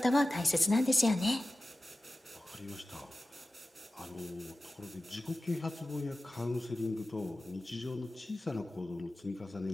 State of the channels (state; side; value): normal; both; correlation 0.95